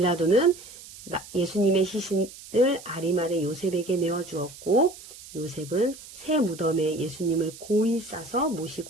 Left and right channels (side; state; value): right; noise; hiss, 17 dB below the sound